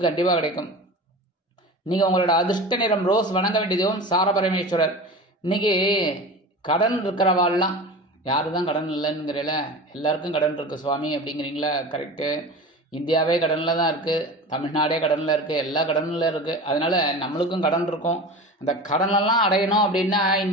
கண்டிப்பா கிடைக்கும். நீங்க உங்களோட அதிர்ஷ்ட நிறம் ரோஸ். வணங்க வேண்டியதும் சார பரமேஸ்வரர். இன்னைக்கு கடன் இருக்கிறவாள்லாம், யாரு தான் கடன் இல்லைங்கிறல, எல்லாருக்கும் கடன் இருக்கு சுவாமி அப்படிங்கிறீங்களா? கரெக்டு. இந்தியாவே கடன்ல தான் இருக்கு, தமிழ்நாடே கடன்ல இருக்கு, எல்லா கடன்ல இருக்கு. அதனால நம்மளுக்கும் கடன் இருக்கும். அந்த கடனெல்லாம் அடையணும் அப்படின்னா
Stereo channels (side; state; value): both; normal; correlation 0.33